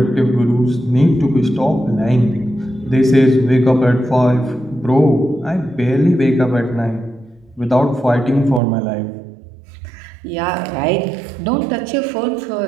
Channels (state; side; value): drops out; left; at 8.6 s